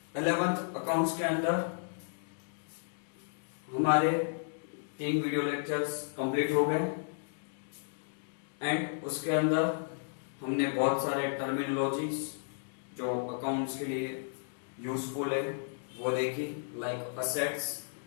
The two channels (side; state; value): right; silent; digital silence